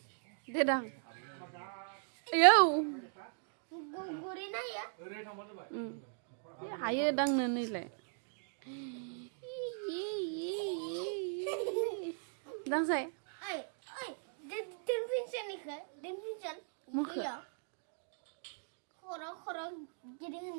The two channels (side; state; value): left; silent; digital silence